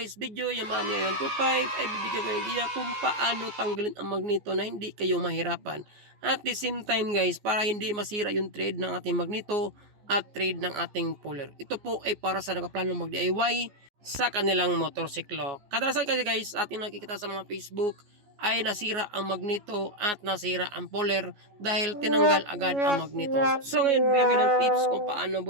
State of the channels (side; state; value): left; late; 14 ms